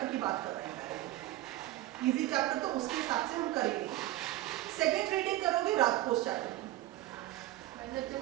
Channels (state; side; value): quieter; left; 15.8 dB